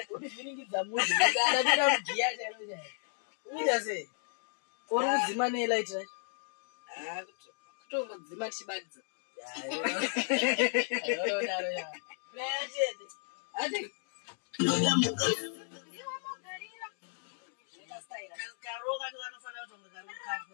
Udi zviningidza muzi ngana bira mugiya chero chero. Uita sei? Uri kudzima ne light right? Kutongodzima chibadza. Daro ya. Player chede. Ade. Karoga ndo anofana kutonga karoga kapo.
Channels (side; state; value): right; silent; 55 dB below the other